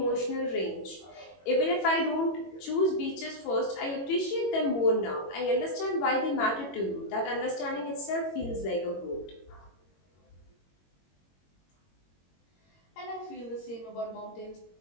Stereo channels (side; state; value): right; late; 21 ms